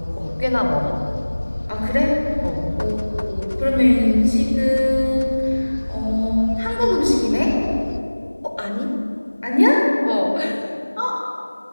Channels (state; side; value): inverted; both; correlation -1.00